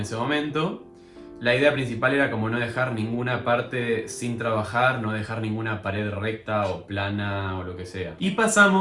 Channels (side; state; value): both; identical; correlation 1.00